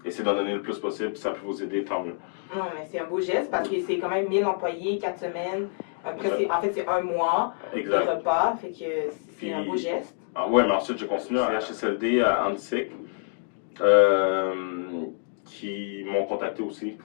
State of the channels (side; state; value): right; silent; digital silence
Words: essayez d'en donner le plus possible, puis ça peut vous aider, tant mieux. Non, mais c'est un beau geste parce que c'est quand même 1000 employés, 4 semaines. Après, en fait, c'est un mois de repas, fait que c'est un beau geste. Ah ouais, mais ensuite, j'ai continué à CHSLD à Annecy, qui m'ont contacté aussi.